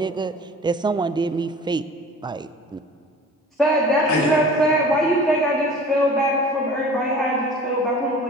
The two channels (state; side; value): normal; both; correlation 0.43